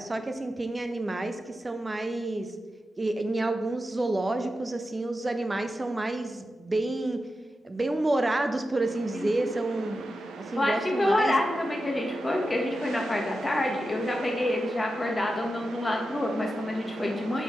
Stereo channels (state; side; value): normal; both; correlation 0.90